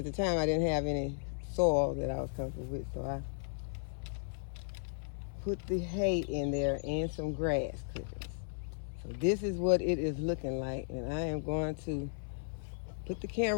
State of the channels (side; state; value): right; silent; 54 dB below the other